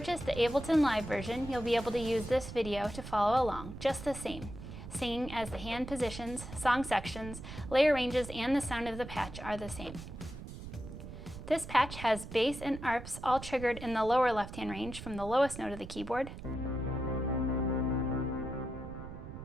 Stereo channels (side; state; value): right; noise; rumble, 11 dB below the sound